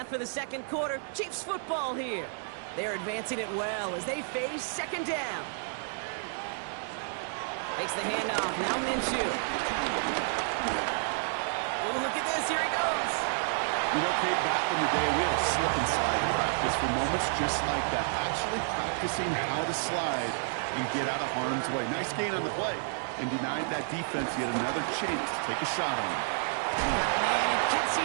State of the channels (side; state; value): left; silent; digital silence